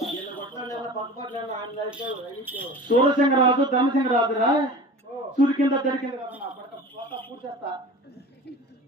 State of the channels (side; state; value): both; normal; correlation 0.37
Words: సూరసింగరాజు ధనసింగరాజు రా. సూర్య దొరికింది పూర్చేస్తా.